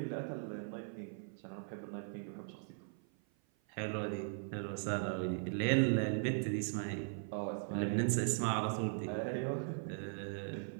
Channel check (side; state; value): left; silent; 52 dB below the other